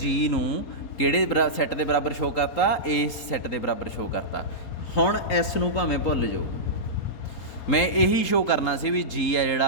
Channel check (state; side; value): late; right; 4.2 ms